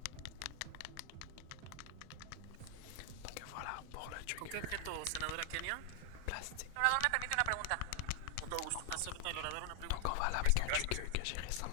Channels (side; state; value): both; different; correlation 0.00